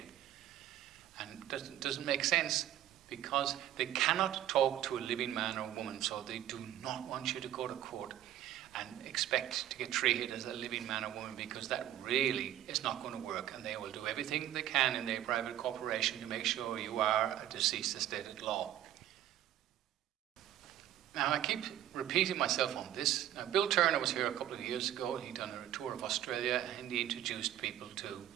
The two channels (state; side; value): quieter; left; 12.1 dB